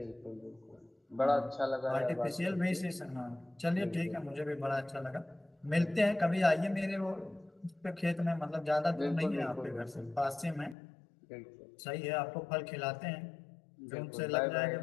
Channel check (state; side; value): drops out; right; at 10.8 s